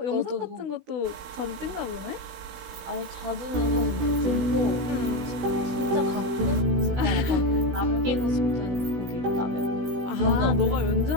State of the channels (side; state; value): left; late; 16 ms